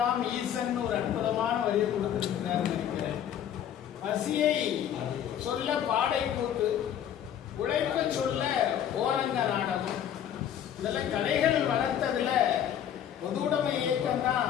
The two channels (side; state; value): right; quieter; 9.8 dB